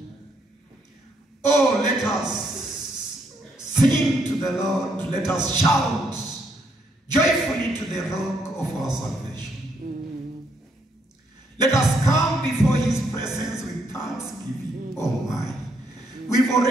Oh, let us sing to the Lord. Let us shout joyfully to the rock of our salvation. Let us come before His presence with thanksgiving. Oh, my. We've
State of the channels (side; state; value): both; normal; correlation 0.74